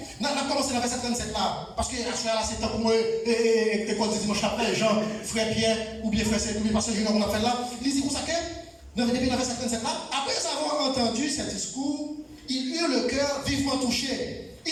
On a commencé dans le verset 37 là, parce que là c'est temps pour moi, école de dimanche après, Jean, frère Pierre, ou bien frère Saint, ou bien pasteur Junior, on a fait là. Il dit comme ça que, depuis le verset 37 là, après avoir entendu ce discours, il eut le cœur vivement touché.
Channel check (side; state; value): both; identical; correlation 1.00